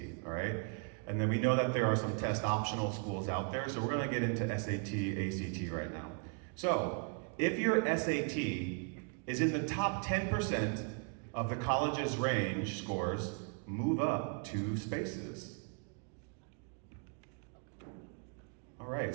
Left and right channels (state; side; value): quieter; left; 38.1 dB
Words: all right? And then we know that there are some test optional schools out there, so we're gonna get into SAT, ACT right now. So, if your SAT is in the top 10% of the college's range scores, move up 2 spaces. All right,